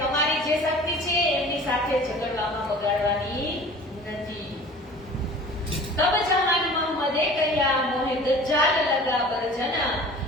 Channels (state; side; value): normal; both; correlation 0.44